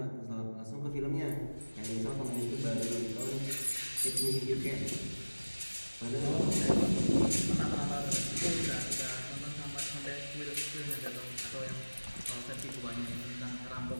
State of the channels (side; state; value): both; inverted; correlation -1.00